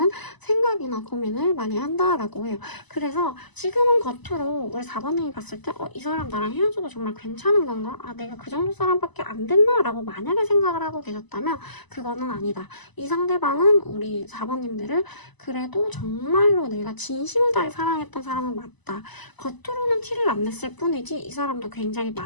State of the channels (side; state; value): right; late; 1.0 ms